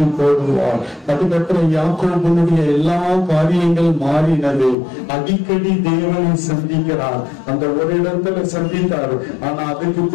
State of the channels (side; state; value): right; drops out; at 4.8 s